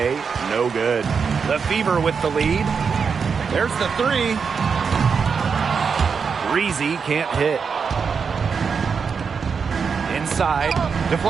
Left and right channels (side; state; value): left; quieter; 5.9 dB